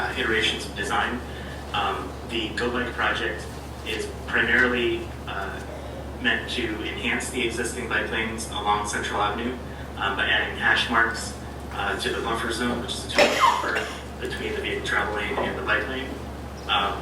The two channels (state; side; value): identical; both; correlation 1.00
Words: iterations of design, the Go Bike project is primarily meant to enhance the existing bike lanes along Central Avenue by adding hash marks to the buffer zone, which is a 2-foot buffer between the vehicle travel lane and the bike lane,